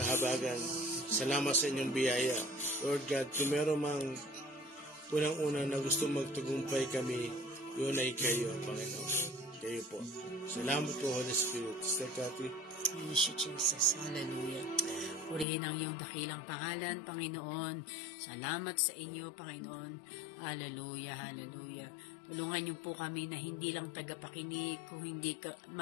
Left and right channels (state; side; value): drops out; right; at 15.5 s